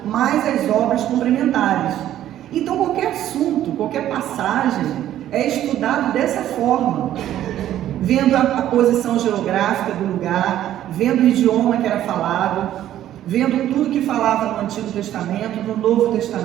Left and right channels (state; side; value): quieter; left; 12.2 dB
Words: mais as obras complementares. Então qualquer assunto, qualquer passagem é estudado dessa forma, vendo a posição geográfica do lugar, vendo o idioma que era falado, vendo tudo que falava no Antigo Testamento, no Novo